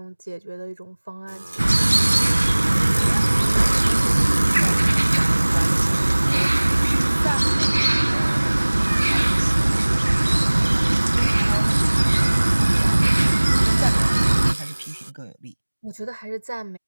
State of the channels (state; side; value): inverted; both; correlation -1.00